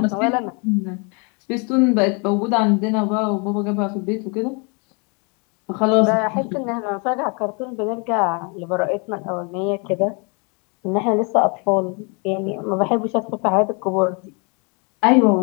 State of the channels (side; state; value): right; quieter; 33.9 dB